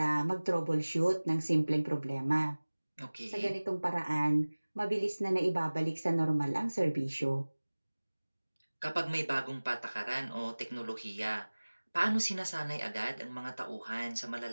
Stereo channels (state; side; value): inverted; both; correlation -1.00